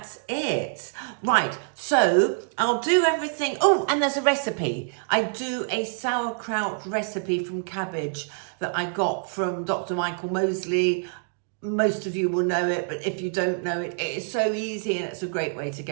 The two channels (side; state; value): left; silent; digital silence